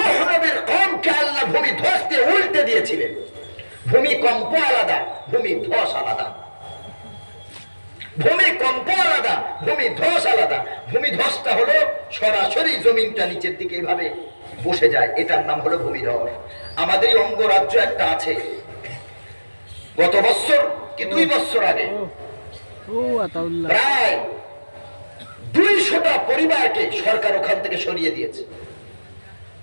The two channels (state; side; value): inverted; both; correlation -1.00